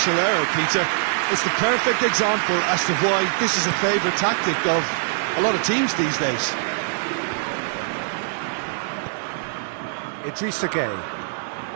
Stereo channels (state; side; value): silent; left; digital silence